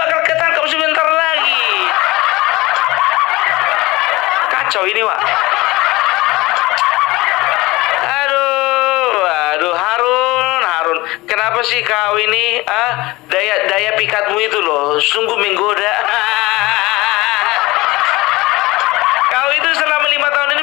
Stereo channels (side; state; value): right; quieter; 20.7 dB